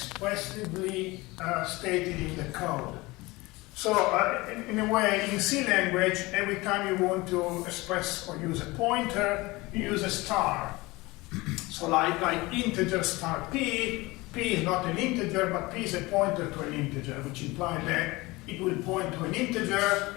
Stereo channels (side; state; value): right; quieter; 22.0 dB